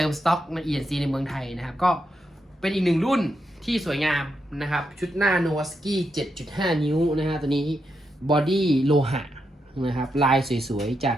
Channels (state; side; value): normal; both; correlation 0.84